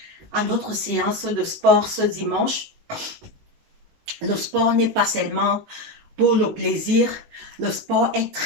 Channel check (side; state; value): left; late; 19 ms